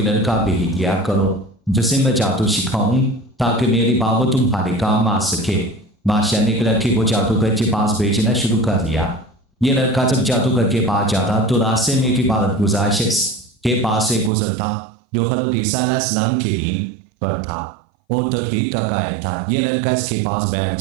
लड़का भेज दिया करो जिसे मैं जादू सिखाऊं ताकि मेरी बाबू तुम्हारे काम आ सके। बादशाह ने एक लड़के को जादूगर के पास भेजना शुरू कर दिया। ये लड़का जब जादूगर के पास जाता तो रास्ते में एक इबादत गुजार शख्स के पास से गुजरता जो हज़रत ईसा अलैहिस्सलाम के दिन पर था और तौहीद का कायल था। ये लड़का इसके पास बैठ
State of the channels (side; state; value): left; drops out; at 14.3 s